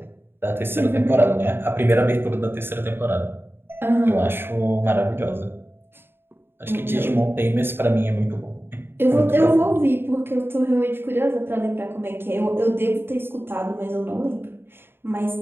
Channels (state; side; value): late; left; 0.11 ms